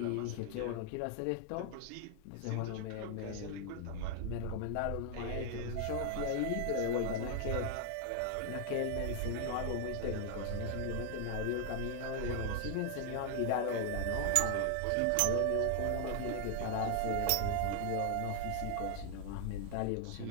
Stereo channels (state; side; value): different; both; correlation 0.00